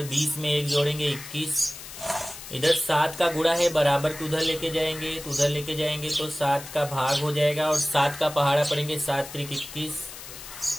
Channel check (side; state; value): left; noise; hiss, 13 dB below the sound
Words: 20 में 1 जोड़ेंगे 21, इधर 7 का गुणा है बराबर को उधर लेके जाएंगे, तो उधर लेके जाएंगे तो 7 का भाग हो जाएगा और 7 का पहाड़ा पड़ेंगे, 7 त्रिक 21,